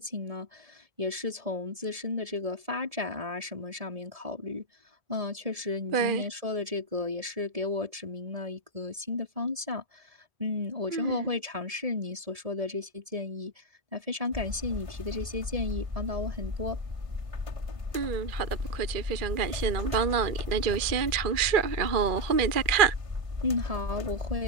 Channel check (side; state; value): left; late; 1.7 ms